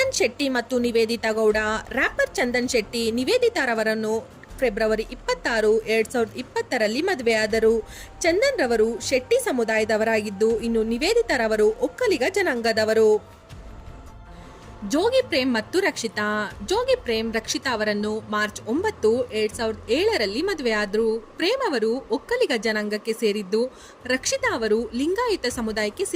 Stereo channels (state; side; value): identical; both; correlation 1.00